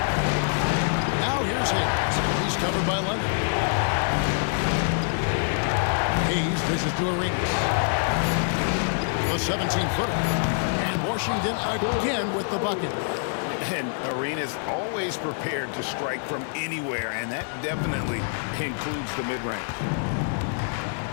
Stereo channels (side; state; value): right; silent; 61 dB below the other